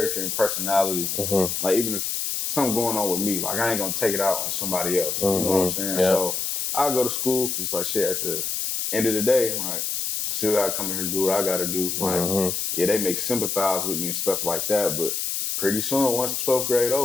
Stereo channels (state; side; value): noise; left; hiss, 1 dB below the sound